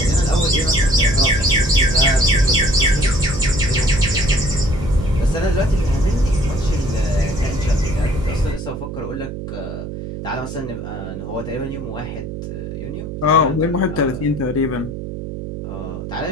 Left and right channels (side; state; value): right; noise; hum, 8 dB below the sound